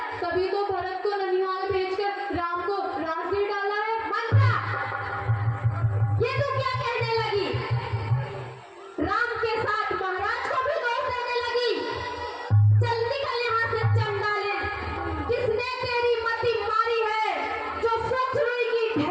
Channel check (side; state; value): both; identical; correlation 1.00